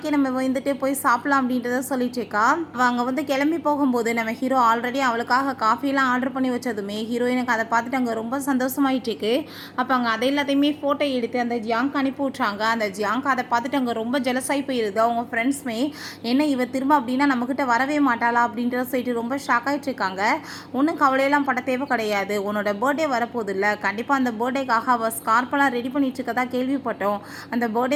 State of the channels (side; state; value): both; identical; correlation 1.00